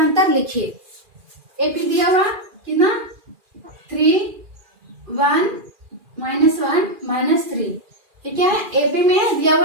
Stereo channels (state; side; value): late; left; 2.4 ms